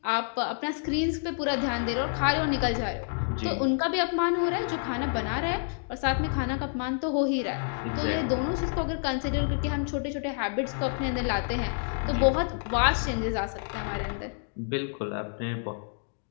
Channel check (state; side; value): silent; right; digital silence